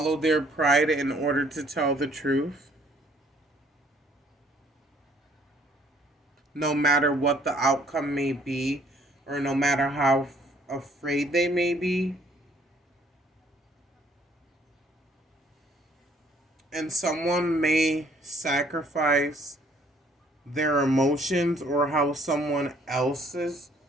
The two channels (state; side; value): normal; both; correlation 0.62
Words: their pride in order to tell the truth. No matter what the outcome may be, or no matter how afraid they may be. And someone may sacrifice their emotions or how someone else's